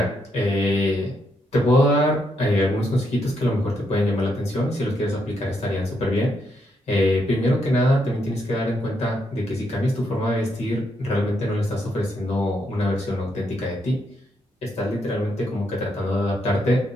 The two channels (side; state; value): both; normal; correlation 0.78